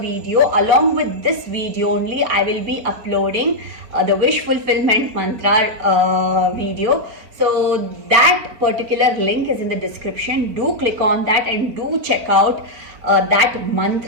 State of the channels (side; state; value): left; late; 4.5 ms